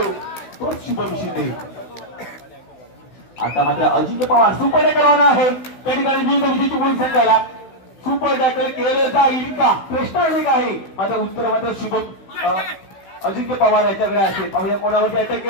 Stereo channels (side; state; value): right; late; 16 ms